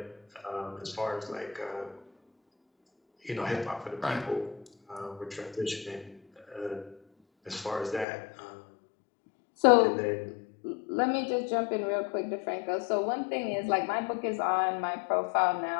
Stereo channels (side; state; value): right; drops out; at 8.1 s